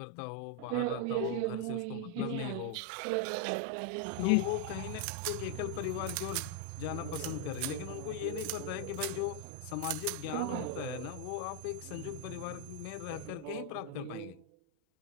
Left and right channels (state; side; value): different; both; correlation 0.00